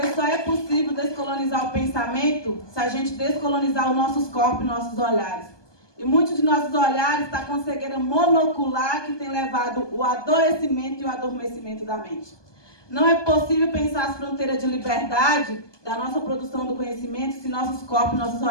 só é possível descolonizar o pensamento se a gente descolonizar os nossos corpos e nossos olhares. E muitos de nossos olhares estão com cegueira monocular que tem levado o adoecimento e o adormecimento da mente. Não é possível pensar as fronteiras de liberdade da nossa produção do conhecimento se nossos corpos e nossos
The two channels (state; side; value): late; right; 1.2 ms